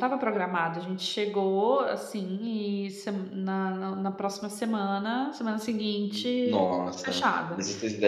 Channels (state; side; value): identical; both; correlation 1.00